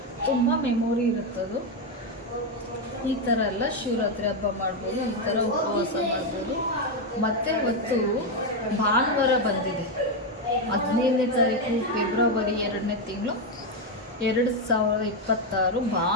ತುಂಬ ಮೆಮೊರಿ ಇರುತ್ತದು. ಈ ಥರ ಎಲ್ಲ ಶಿವರಾತ್ರಿ ಹಬ್ಬ ಮಾಡ್ಬೋದು, ಈ ಥರ ಉಪವಾಸ ಮಾಡ್ಬೋದು. ಮತ್ತು ಇವತ್ತು ಭಾನುವಾರ ಬಂದಿದೆ, 15ನೇ ತಾರೀಕು ಫೆಬ್ರವರಿ 2ನೇ ತಿಂಗಳು 2026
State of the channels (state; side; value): normal; both; correlation 0.06